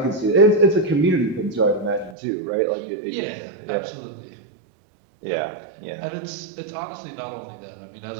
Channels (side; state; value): left; drops out; at 2.1 s